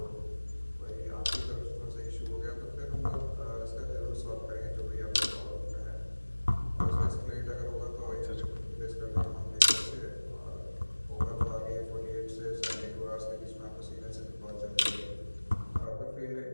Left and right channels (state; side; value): inverted; both; correlation -1.00